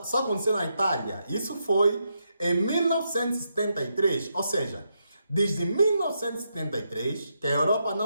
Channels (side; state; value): both; inverted; correlation -0.82